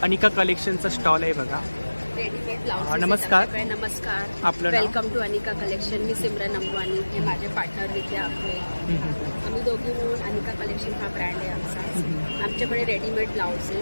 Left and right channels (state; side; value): inverted; both; correlation -1.00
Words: अनिका कलेक्शनचा स्टॉल आहे बघा. Readymade blouse. नमस्कार. नमस्कार. आपलं नाव? Welcome to Anika collection. मी सिमरन अंबानी, हे माझे पार्टनर विद्या आपले. आम्ही दोघी मिळून अनिका कलेक्शन हा ब्रँड आहे आमचा. आमच्याकडे readymade